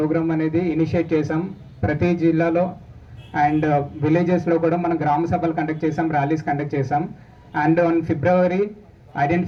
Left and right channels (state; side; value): identical; both; correlation 1.00